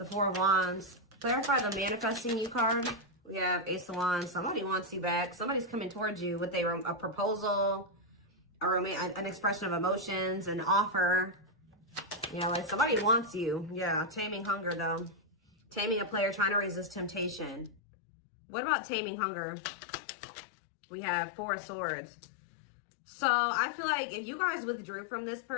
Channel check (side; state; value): right; drops out; at 17.8 s